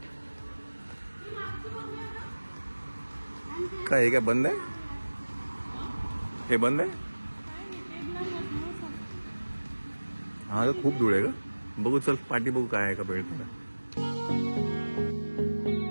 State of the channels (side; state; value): both; inverted; correlation -1.00